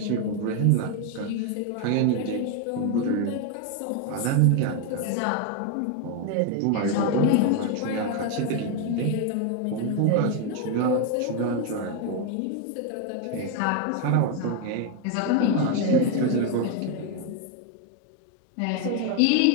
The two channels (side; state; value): both; different; correlation 0.01